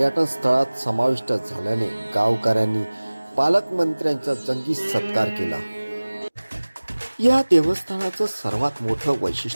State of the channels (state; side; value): inverted; both; correlation -1.00